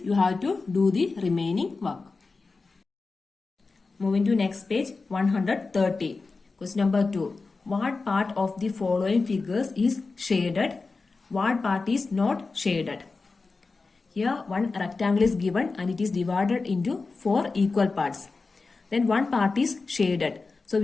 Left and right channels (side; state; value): right; quieter; 4.0 dB